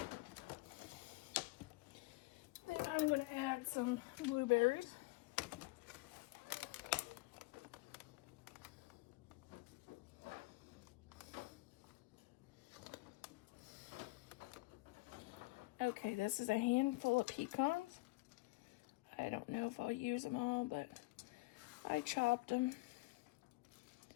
I'm going to add some blueberries. Okay, this is a handful of pecans. I don't know if I'll use them all, but I chopped them.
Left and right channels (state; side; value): quieter; right; 22.8 dB